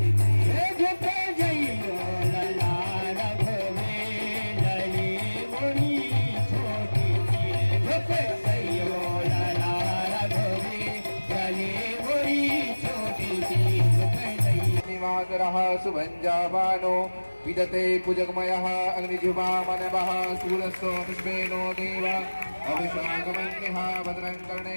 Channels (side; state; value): both; inverted; correlation -1.00